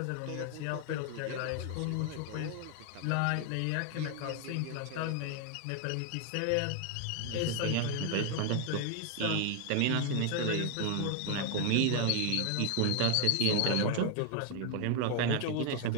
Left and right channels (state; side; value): different; both; correlation 0.00